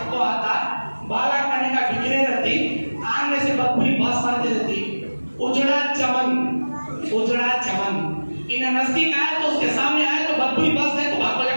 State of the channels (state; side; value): inverted; both; correlation -1.00